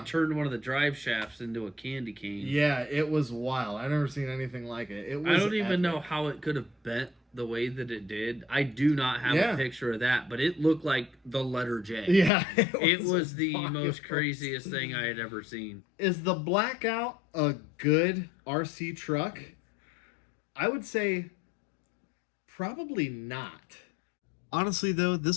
turned one of the drive shafts into a candy cane. Yeah, it was wild. I've never seen anything like it. It was I don't even know how it could have bent the way that it did. I do not have a picture of that, but it looked like the letter J. Yeah, it was the most craziest thing I had ever seen. Is the Blackout a good RC truck? I would say probably not. Honestly, though,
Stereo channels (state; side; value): drops out; right; at 12.3 s